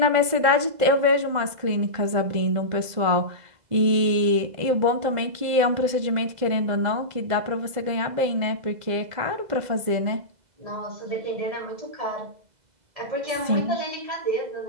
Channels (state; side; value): late; left; 2.0 ms